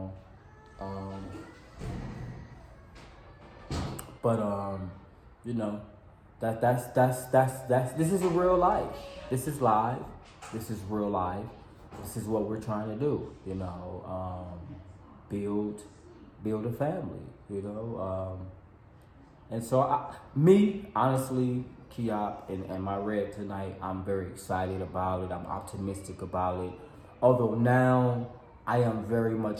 on. That's this is a real life. This is live. This is real life. This is what we're trying to do. Build a family. And so honestly, Kiop and my red tonight, I'm very excited about it. I'm optimistic about it. Although now I am very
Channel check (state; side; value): identical; both; correlation 1.00